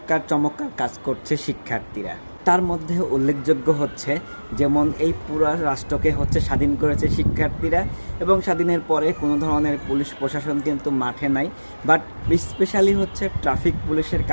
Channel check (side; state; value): both; inverted; correlation -1.00